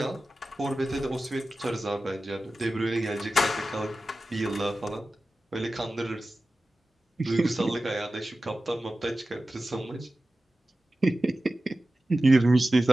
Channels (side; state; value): both; normal; correlation 0.95